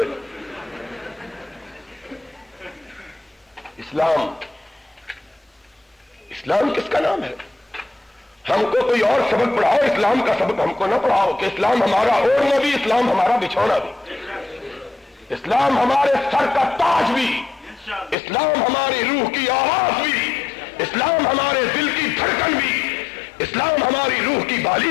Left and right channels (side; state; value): right; drops out; at 18.2 s